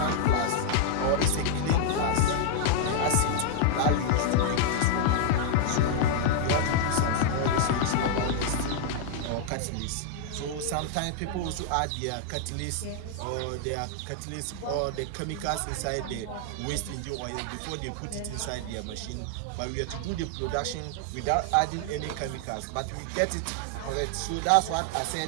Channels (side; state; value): both; different; correlation 0.00